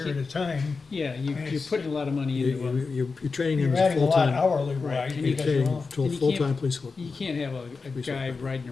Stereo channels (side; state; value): right; quieter; 4.5 dB